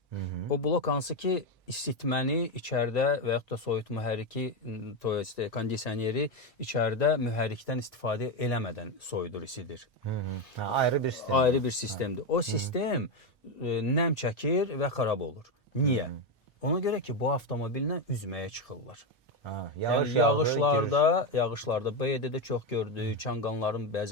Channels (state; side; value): normal; both; correlation 0.10